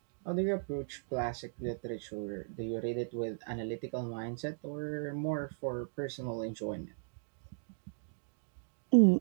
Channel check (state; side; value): silent; left; digital silence